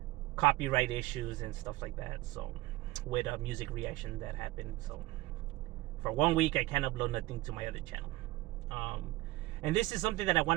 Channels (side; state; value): left; quieter; 18.8 dB